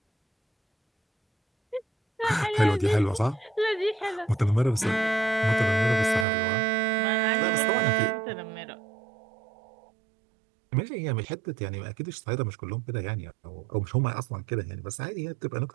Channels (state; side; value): drops out; left; at 6.2 s